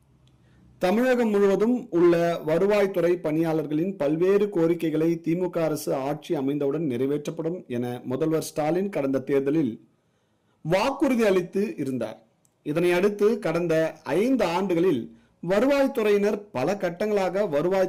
தமிழகம் முழுவதும் உள்ள வருவாய்த்துறை பணியாளர்களின் பல்வேறு கோரிக்கைகளை திமுக அரசு ஆட்சி அமைந்தவுடன் நிறைவேற்றப்படும் என முதல்வர் ஸ்டாலின் கடந்த தேர்தலில் வாக்குறுதி அளித்து இருந்தார். இதனை அடுத்து கடந்த 5 ஆண்டுகளில் வருவாய்த்துறையினர் பல கட்டங்களாக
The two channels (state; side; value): identical; both; correlation 1.00